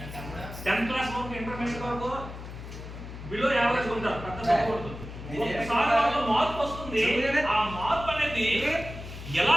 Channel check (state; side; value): noise; left; hum, 11 dB below the sound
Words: 10th క్లాస్ వరకు, ఇంటర్మీడియట్ వరకు బిలో యావరేజ్ ఉంటారు, పెద్ద చదవకూడదు. ఒకసారి మార్పు వస్తుంది. ఆ మార్పు అనేది ఎలా